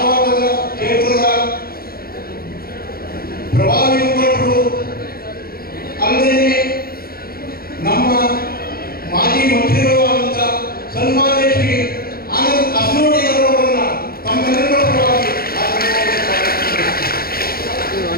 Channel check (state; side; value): late; right; 0.44 ms